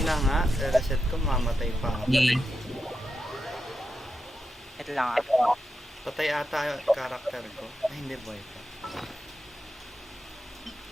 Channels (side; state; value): both; normal; correlation 0.87